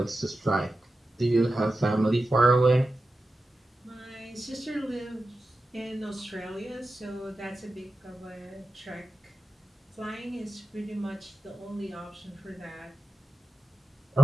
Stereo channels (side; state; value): both; normal; correlation 0.94